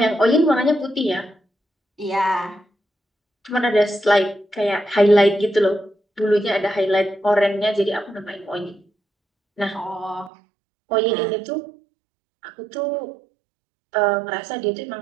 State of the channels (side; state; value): left; drops out; at 10.3 s